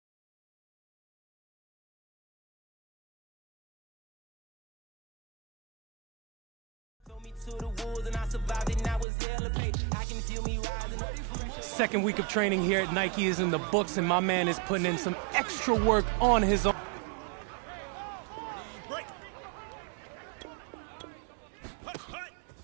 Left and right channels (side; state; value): left; drops out; at 9.1 s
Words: Second week of training here at Nike is in the books, and my man is putting in some extra work on his own.